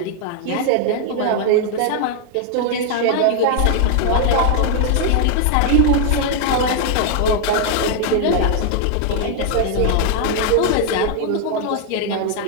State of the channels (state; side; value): different; both; correlation 0.00